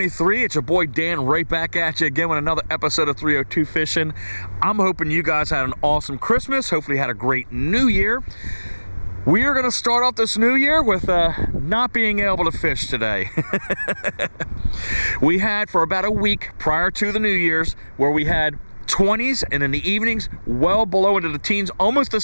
It's your boy Dan right back at you again with another episode of 302 Fishing. I'm hoping you guys had an awesome Christmas. Hopefully you had a great New Year. We are going to start off this new year with not being able to fish today. We had for about a week prior to the New Year's where we had 20s and in the evenings well below into the teens, almost to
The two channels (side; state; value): both; inverted; correlation -1.00